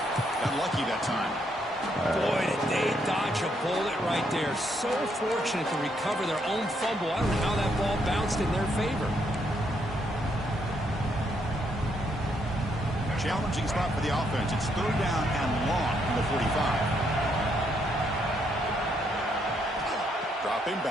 Got lucky that time. Boy, did they dodge a bullet right there. So fortunate to recover their own fumble. I don't know how that ball bounced in their favor. Challenging spot for the offense. It's 3rd down and long from the 45. Dropping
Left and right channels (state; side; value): normal; both; correlation 0.75